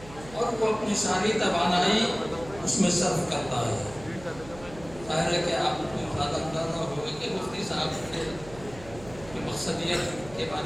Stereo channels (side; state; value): right; noise; hum, 17 dB below the sound